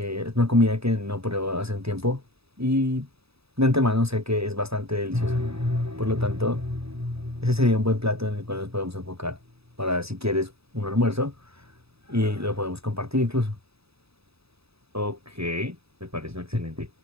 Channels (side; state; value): left; late; 0.78 ms